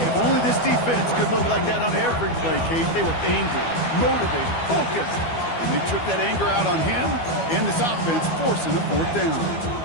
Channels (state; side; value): late; right; 12 ms